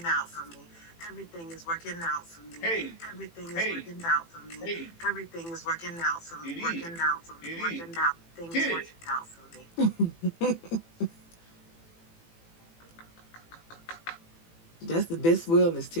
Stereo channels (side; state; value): right; late; 18 ms